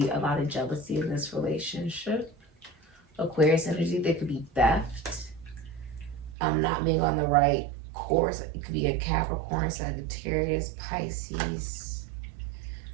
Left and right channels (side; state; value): left; drops out; at 6.4 s